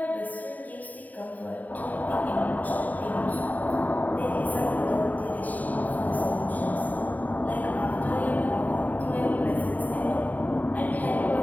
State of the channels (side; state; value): right; late; 0.077 ms